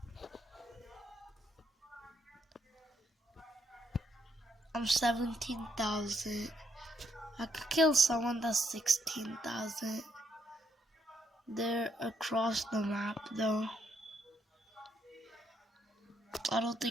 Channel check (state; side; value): normal; both; correlation 0.75